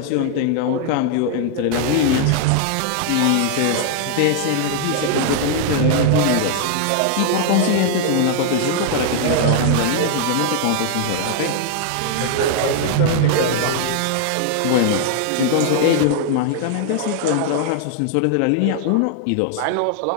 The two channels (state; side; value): different; both; correlation 0.00